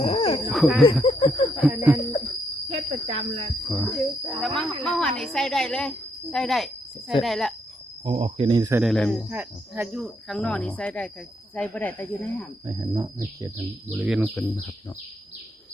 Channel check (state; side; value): normal; both; correlation 0.76